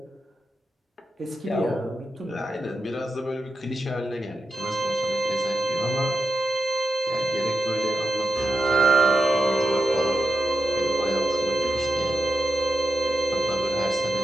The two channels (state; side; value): normal; both; correlation 0.88